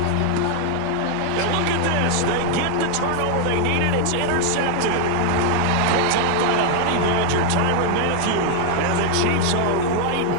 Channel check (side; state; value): both; different; correlation 0.00